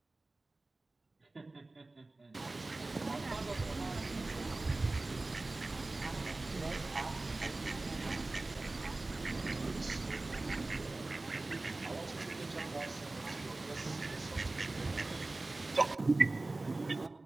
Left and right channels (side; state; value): left; quieter; 3.1 dB